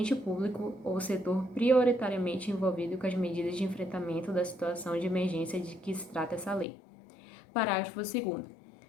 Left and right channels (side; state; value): right; drops out; at 6.7 s